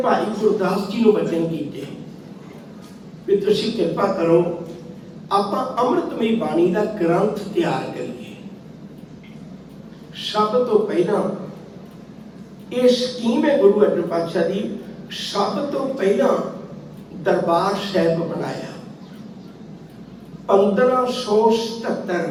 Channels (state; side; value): identical; both; correlation 1.00